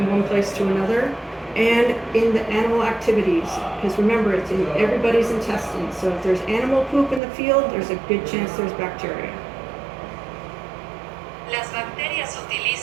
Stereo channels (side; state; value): left; drops out; at 7.2 s